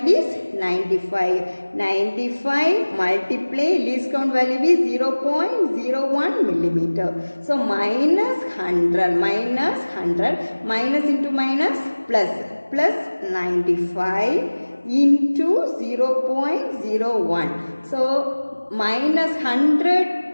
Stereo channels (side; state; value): both; inverted; correlation -1.00